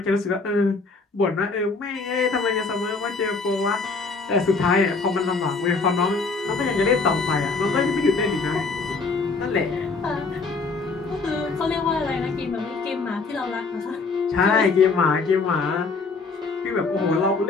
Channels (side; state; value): right; quieter; 4.2 dB